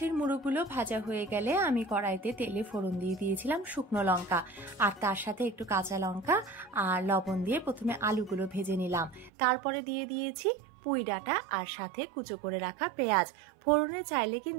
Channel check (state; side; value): drops out; left; at 9.3 s